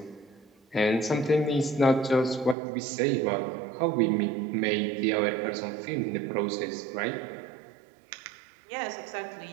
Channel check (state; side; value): drops out; left; at 2.6 s